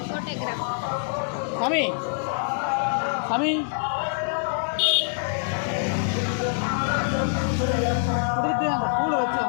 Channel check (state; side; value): silent; right; digital silence